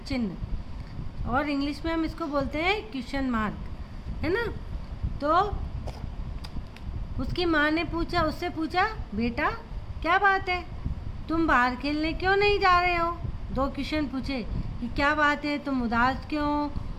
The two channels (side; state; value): both; identical; correlation 1.00